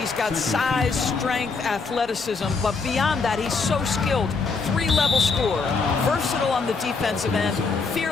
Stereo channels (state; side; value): quieter; right; 4.6 dB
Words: got size, strength, athleticism, but beyond that, he's so skilled. 3-level scorer, versatile on the defensive end,